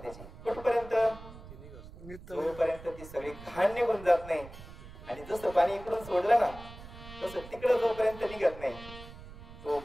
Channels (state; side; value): noise; right; rumble, 16 dB below the sound